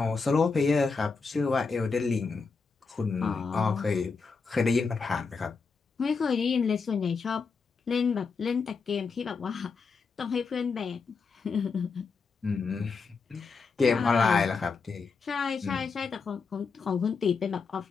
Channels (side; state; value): right; quieter; 4.9 dB